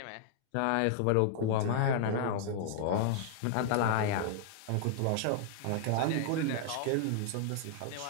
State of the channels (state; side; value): different; both; correlation -0.01